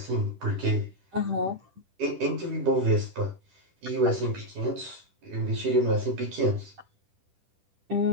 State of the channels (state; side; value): late; left; 10 ms